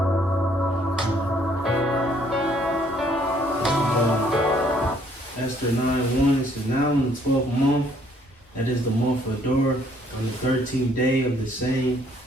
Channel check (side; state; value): both; normal; correlation 0.64